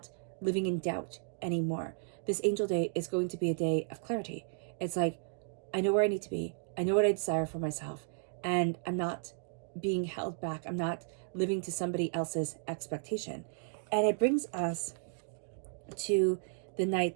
living in doubt anymore. This Angel Day is going to be a day of clarity. It's like I know where I need to be. I know what I desire for myself, and I'm not being held back. I'm not living to somebody else's expectation. And it brings us to the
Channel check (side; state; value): left; silent; digital silence